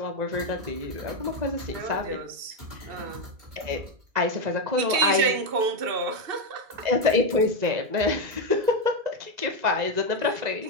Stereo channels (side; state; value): left; late; 2.7 ms